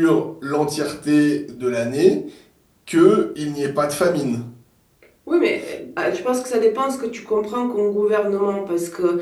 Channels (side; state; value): both; identical; correlation 1.00